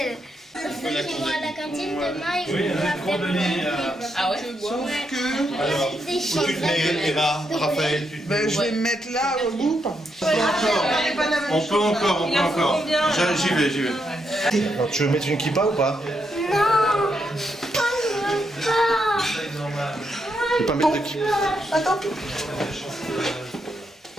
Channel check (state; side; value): normal; both; correlation 0.81